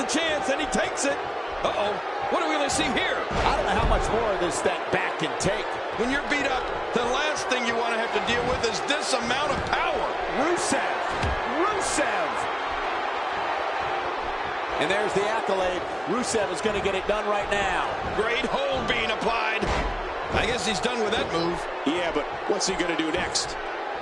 chance and he takes it. Uh-oh. What do we really see here? I don't know how much more of this that back can take. When you're beat up, the last thing you want to have to deal with is this amount of power. Rusev. Rusev. And there's the accolade. Rusev is going to get it done right now. Great hold being applied. I guess he's done with that move. Yeah, but what's he going to do next?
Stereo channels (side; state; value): both; identical; correlation 1.00